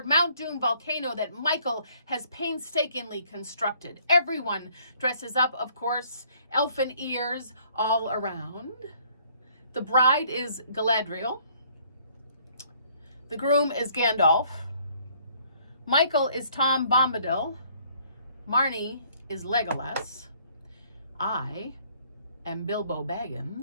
Mount Doom volcano that Michael has painstakingly constructed. Everyone dresses up, of course, elfin ears all around. The bride is Galadriel. The groom is Gandalf. Michael is Tom Bombadil. Marnie is Legolas. I am Bilbo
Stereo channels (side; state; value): both; inverted; correlation -0.62